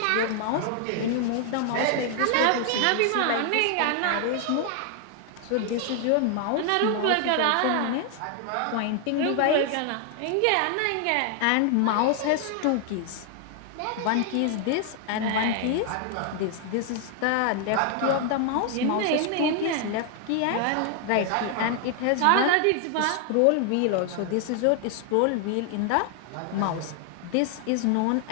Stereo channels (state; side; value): different; both; correlation 0.00